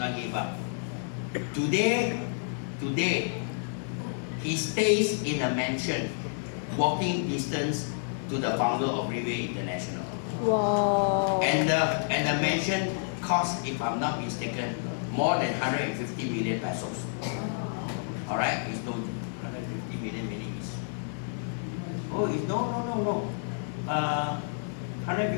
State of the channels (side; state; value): right; silent; digital silence